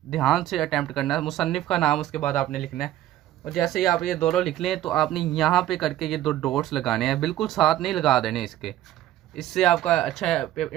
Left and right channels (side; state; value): left; quieter; 13.4 dB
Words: ध्यान से अटैम्प्ट करना है। मुसन्निफ़ का नाम उसके बाद आपने लिखना है और जैसे ही आप ये दोनों लिख लें तो आपने यहाँ पे करके ये दो डॉट्स लगाने हैं, बिल्कुल साथ नहीं लगा देने इसके। इससे आपका अच्छा